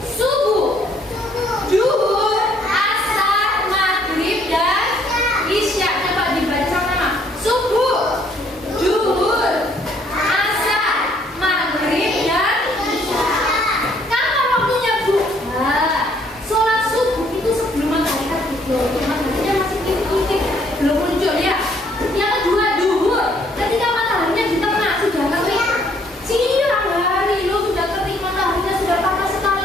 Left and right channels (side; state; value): both; normal; correlation 0.65